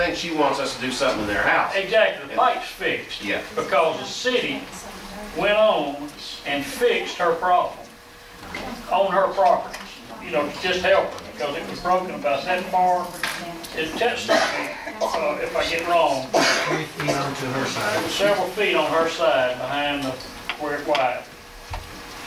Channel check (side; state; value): both; identical; correlation 1.00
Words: she wants us to do something in their house. Exactly, the pipe's fixed. Yeah. Because the city went on and fixed her problem on her property. You know, to just help her, because it was broken about that far. If I get wrong, 3 feet onto her side. several feet on her side behind where it widened.